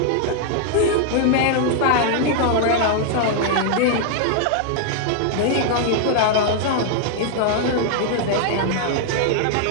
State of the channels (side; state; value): both; different; correlation 0.00